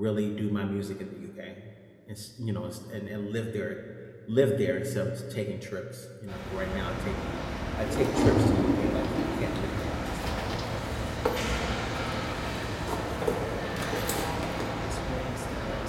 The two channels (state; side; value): identical; both; correlation 1.00